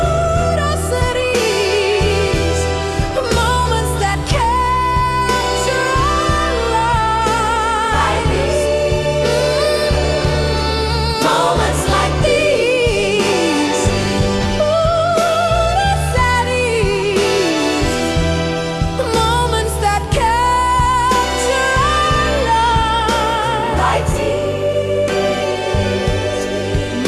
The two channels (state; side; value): identical; both; correlation 1.00